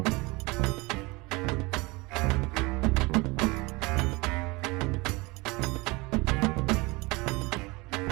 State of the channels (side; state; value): left; quieter; 24.4 dB